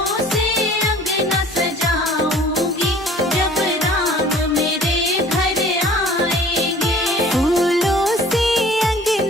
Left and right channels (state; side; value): normal; both; correlation 0.49